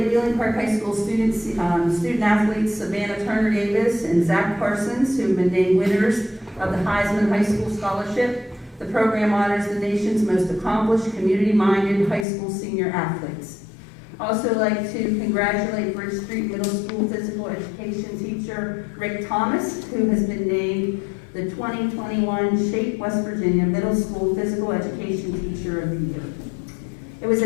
Wheeling Park High School student athletes Savannah Turner Davis and Zach Parsons, who have been named winners of the Heisman High School Scholarship. The program honors the nation's most accomplished, community-minded high school senior athletes. Also like to congratulate Bridge Street Middle School physical education teacher Rick Thomas, who has been named the 2021 Shape West Virginia Middle School Physical Education Teacher of the Year. It was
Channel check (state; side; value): drops out; right; at 12.2 s